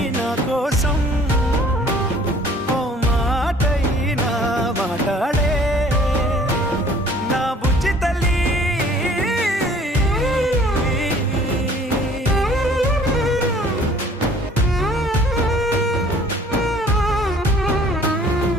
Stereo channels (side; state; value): both; normal; correlation 0.54